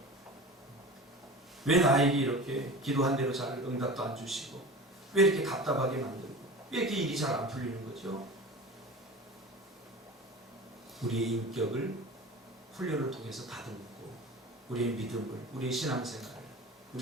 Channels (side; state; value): both; normal; correlation 0.34